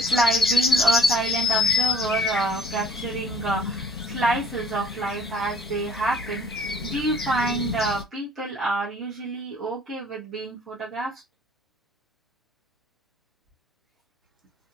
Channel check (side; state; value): both; normal; correlation 0.53